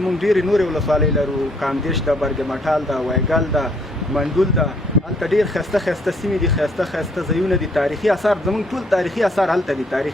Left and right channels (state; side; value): normal; both; correlation 0.66